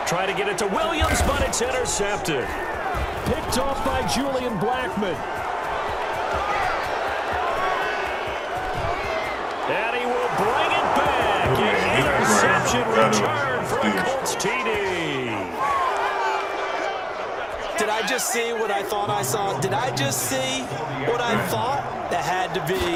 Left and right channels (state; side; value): identical; both; correlation 1.00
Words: Try to get it to Williams, but it's intercepted. Picked off by Julian Blackman. And he will bring it back. An interception return for a Colts TD. Did I just see what I thought I saw? Did I just see what I thought? That had to